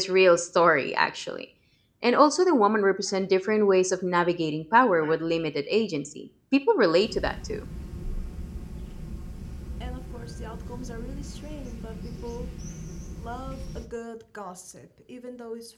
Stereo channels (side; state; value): both; identical; correlation 1.00